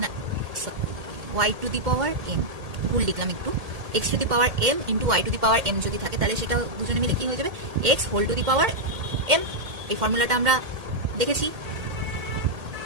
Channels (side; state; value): left; late; 1.8 ms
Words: না, Y to the power M, ভুল লিখলাম একটু, X to the power M into Y to the power M যদি থাকে, তাহলে সেটা দুজনে মিলে কি হয়ে যাবে, X whole to the power M. এই ফর্মুলাটা আমরা দেখেছি,